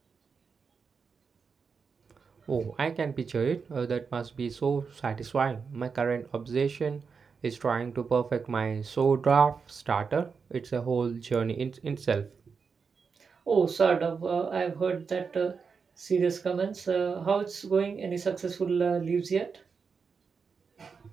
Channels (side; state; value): left; quieter; 5.5 dB